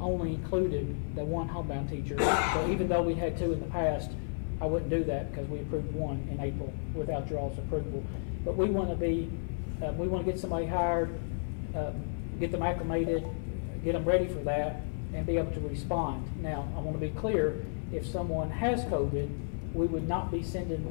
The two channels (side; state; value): right; silent; 56 dB below the other